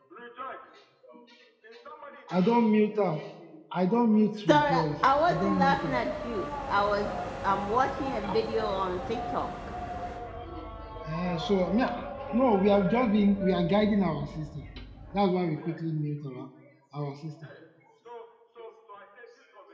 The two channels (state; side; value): identical; both; correlation 1.00